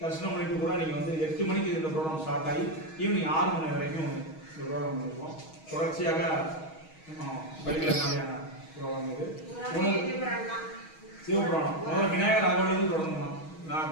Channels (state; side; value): late; right; 6.3 ms